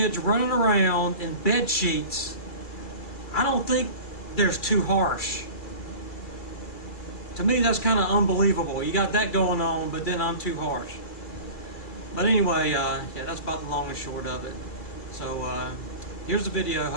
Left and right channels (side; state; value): right; late; 2.3 ms